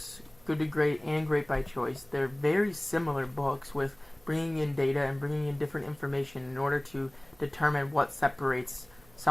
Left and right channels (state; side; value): noise; right; hum, 27 dB below the sound